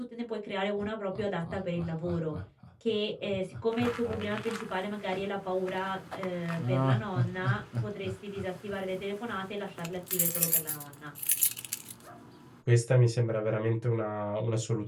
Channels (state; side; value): identical; both; correlation 1.00